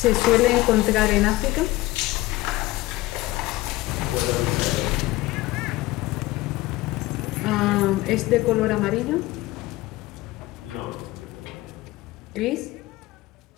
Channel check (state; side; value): quieter; right; 18.9 dB